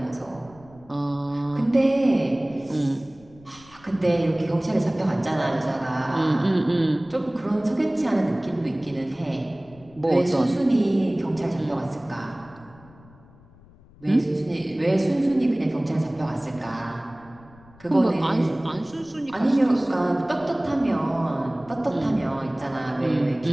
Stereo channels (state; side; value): noise; left; rumble, 25 dB below the sound